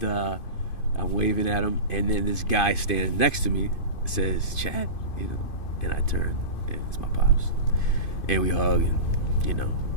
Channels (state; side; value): late; right; 2.5 ms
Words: I'm waving at him, and then this guy standing next to me says, "Chad," and I turn, and it's my pops, and we hug, and